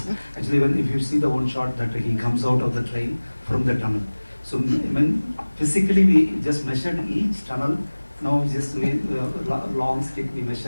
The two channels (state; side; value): inverted; both; correlation -1.00